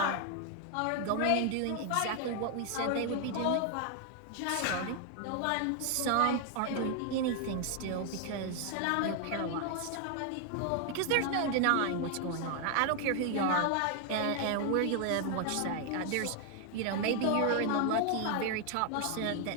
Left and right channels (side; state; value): both; different; correlation 0.00